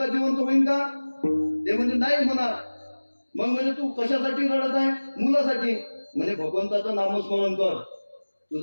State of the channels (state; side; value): inverted; both; correlation -1.00